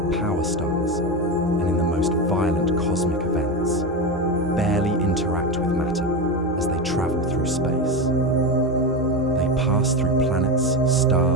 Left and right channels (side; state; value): both; normal; correlation 0.17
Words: power stars and in the most violent cosmic events, barely interact with matter as they travel through space. They pass through planets,